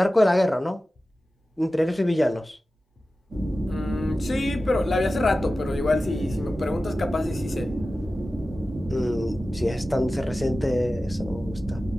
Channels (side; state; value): both; normal; correlation 0.95